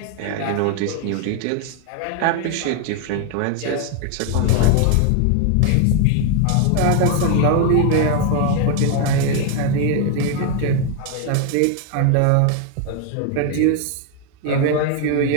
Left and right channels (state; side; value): different; both; correlation 0.01